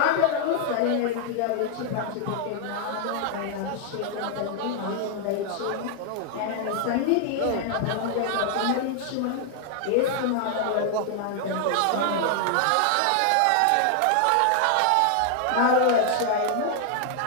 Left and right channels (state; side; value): different; both; correlation 0.00